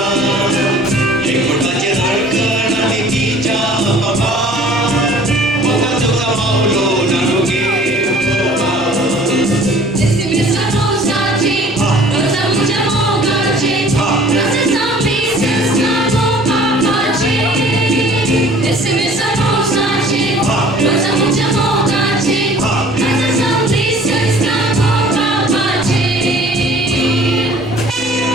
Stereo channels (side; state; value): both; normal; correlation 0.50